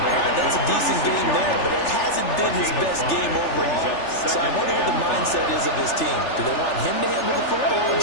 made at That's a the decent game 36-yard there, but line. it hasn't been his best game overall. So I wonder what the mindset is of his team. Do they want him to handle the football and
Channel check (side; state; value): right; late; 3.4 ms